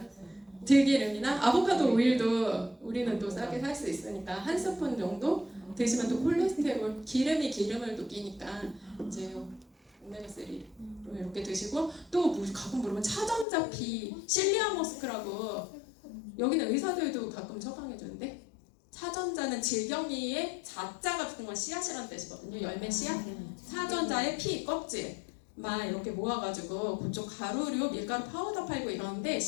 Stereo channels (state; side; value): drops out; right; at 13.5 s